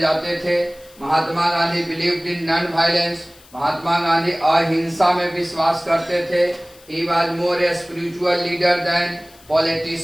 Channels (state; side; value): noise; left; hiss, 25 dB below the sound